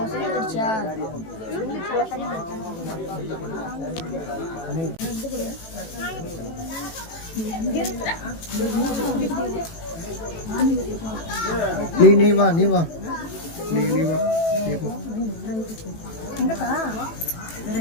நீ வா நீ வா நீ வா நீ போ. வேற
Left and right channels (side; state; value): right; late; 18 ms